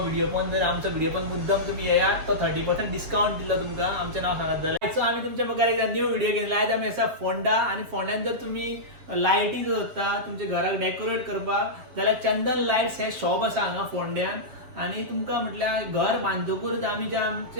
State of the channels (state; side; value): late; left; 7.6 ms